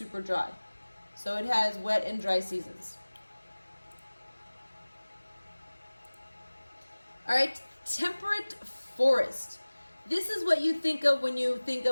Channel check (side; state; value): both; inverted; correlation -1.00